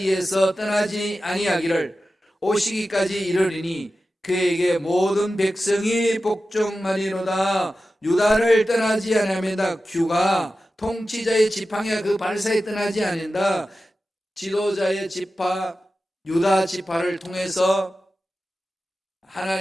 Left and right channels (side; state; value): both; normal; correlation 0.93